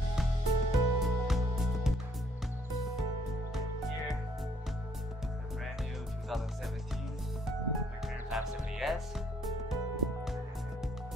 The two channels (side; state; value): both; normal; correlation 0.66